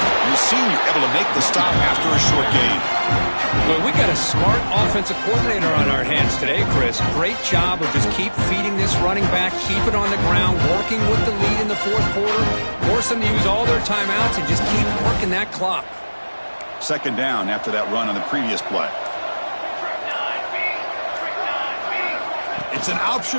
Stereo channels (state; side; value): inverted; both; correlation -1.00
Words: senior able to make the stop after a short gain. Well, we got a smart offensive coordinator on our hands today, Chris. Great job of just keep feeding this running back, keep it on the ground, working with the lead in the 4th quarter, force them to use all their timeouts, and just keep working that clock. 2nd down after that run on the previous play. It's an